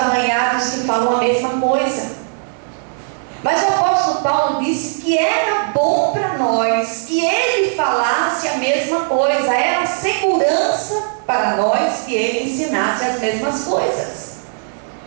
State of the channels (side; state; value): left; silent; 62 dB below the other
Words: que falam a mesma coisa. Mas o apóstolo Paulo disse que era bom para nós que ele falasse a mesma coisa, era segurança para nós que ele ensinasse as mesmas coisas.